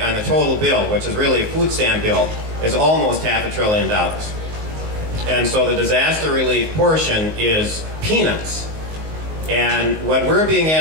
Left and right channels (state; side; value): late; left; 19 ms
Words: on the total bill, which is really a food stamp bill, is almost $500 billion. And so the disaster relief portion is peanuts. And what we're being